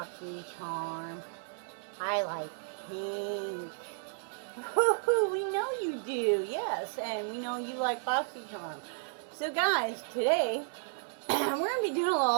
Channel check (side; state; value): left; silent; digital silence